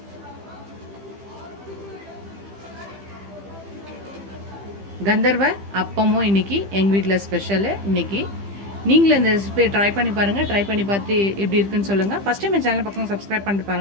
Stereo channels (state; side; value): late; left; 15 ms